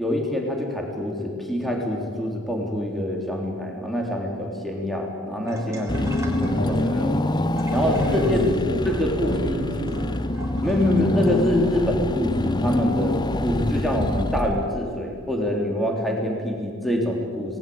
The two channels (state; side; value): normal; both; correlation 0.67